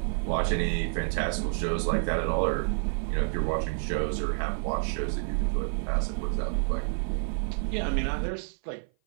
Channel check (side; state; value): left; silent; 55 dB below the other